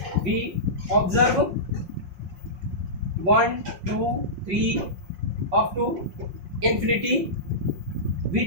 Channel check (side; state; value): left; late; 5.5 ms